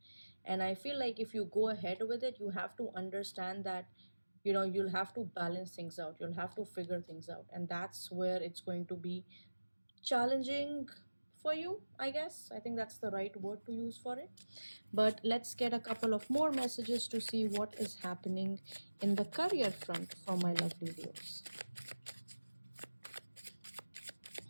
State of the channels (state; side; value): inverted; both; correlation -1.00